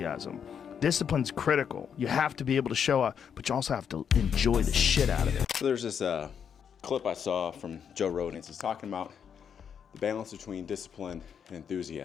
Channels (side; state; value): right; quieter; 7.6 dB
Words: Discipline's critical. You have to be able to show up, but you also have to enjoy the shit out of it. So there's this clip I saw from Joe Rogan. He's talking about the balance between discipline and